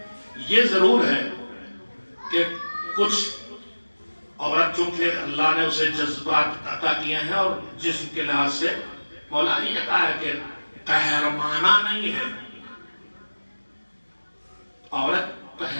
یہ ضرور ہے کہ کچھ عورت چونکہ اللہ نے اسے جذبات عطا کیے ہیں اور جسم کے لحاظ سے مولا نے یہ کہا ہے کہ قہرمانہ نہیں ہے، عورت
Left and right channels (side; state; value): both; inverted; correlation -1.00